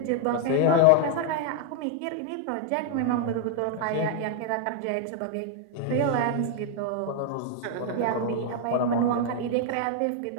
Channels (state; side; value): different; both; correlation 0.00